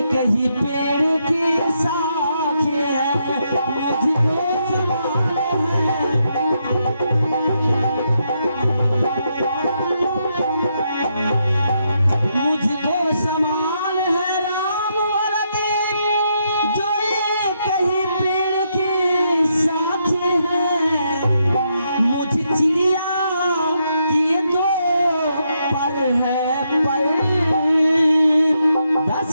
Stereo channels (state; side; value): inverted; both; correlation -0.79